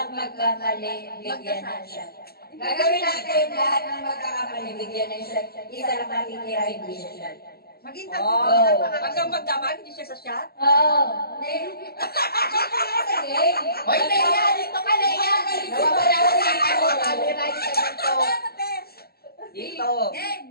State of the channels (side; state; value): right; late; 0.45 ms